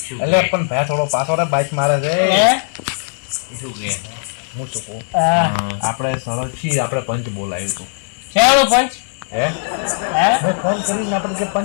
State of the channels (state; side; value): silent; right; digital silence